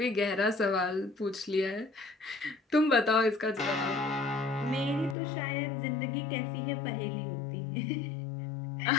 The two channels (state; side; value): drops out; right; at 5.2 s